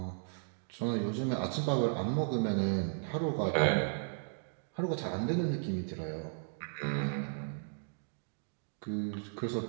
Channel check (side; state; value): left; silent; digital silence